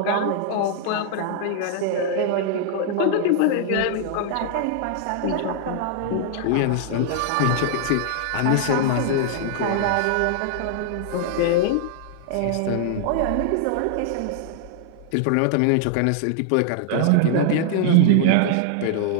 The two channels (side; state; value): both; different; correlation 0.00